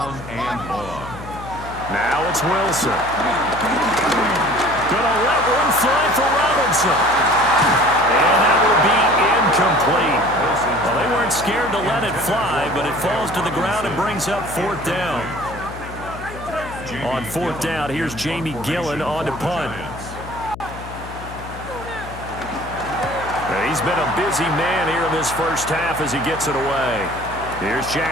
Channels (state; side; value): noise; left; hum, 13 dB below the sound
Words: and long. Now it's Wilson. Gonna let one fly for Robinson. And that will be incomplete. Well, they weren't scared to let it fly, but it falls to the ground and brings up 4th down. On 4th down, here's Jamie Gillen on to punt. He's been a busy man here in this first half as he gets it away. Here's